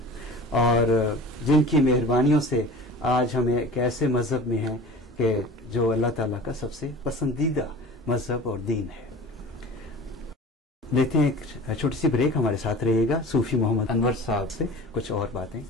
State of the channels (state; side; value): normal; both; correlation 0.39